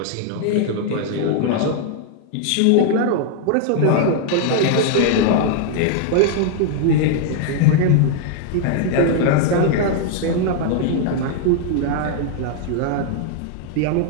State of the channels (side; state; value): both; different; correlation 0.00